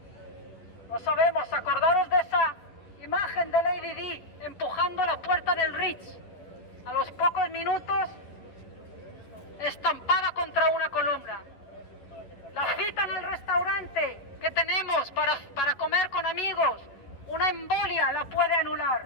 No sabemos. Acordaros de esa imagen de Lady Di empujando la puerta del Ritz. A los pocos minutos, estampada contra una columna. La cita en el restaurante que tenemos para comer con amigos, una embolia la puede anular.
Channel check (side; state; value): right; late; 10 ms